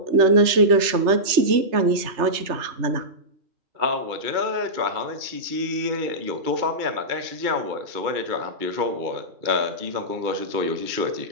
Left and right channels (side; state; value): left; late; 3.3 ms